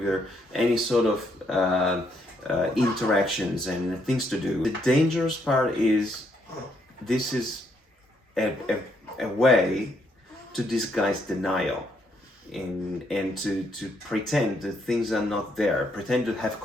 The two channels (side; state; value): both; normal; correlation 0.73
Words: her any sort of interactions and things to do. The dangerous part is this is a way to disguise denial and to pretend that things are not there, pretend to have